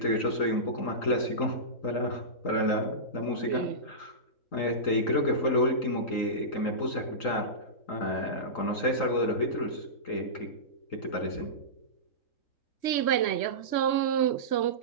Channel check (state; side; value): late; right; 3.1 ms